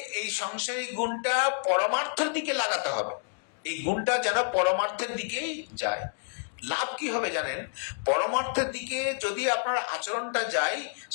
এই সংসারী গুণটা পরমার্থের দিকে লাগাতে হবে। এই গুণটা যেন পরমার্থের দিকেই যায়। লাভ কি হবে জানেন? পরমার্থের দিকে যদি আপনার আচরণটা যায়,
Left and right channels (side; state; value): right; silent; digital silence